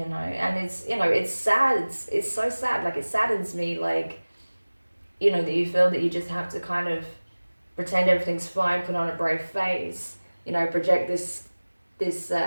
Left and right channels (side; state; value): both; inverted; correlation -1.00